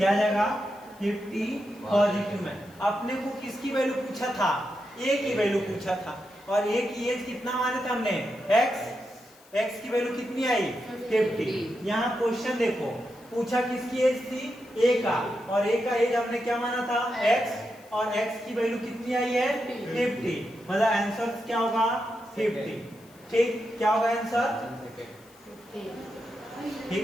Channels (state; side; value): noise; left; hiss, 27 dB below the sound